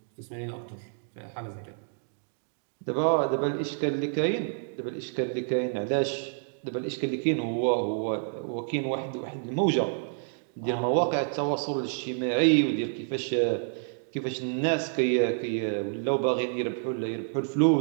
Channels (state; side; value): silent; left; digital silence